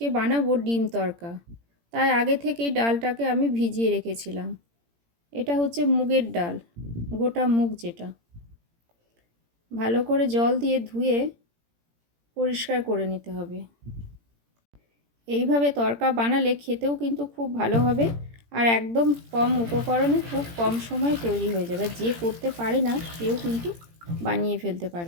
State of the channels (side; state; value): left; late; 17 ms